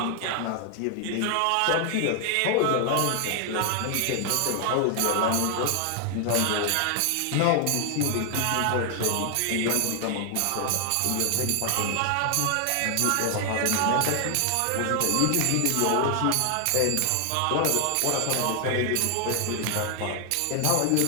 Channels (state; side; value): different; both; correlation 0.00